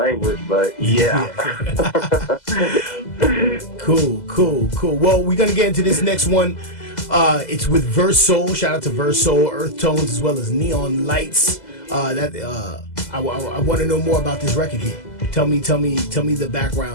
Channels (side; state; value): right; late; 2.0 ms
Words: but yeah. Cool. Well, we're gonna get into this next one. It's with Verse Soul. Shout out to Verse Soul, Earth Tones, as well as Neon Lights. I want to know more about this record here. Tell me the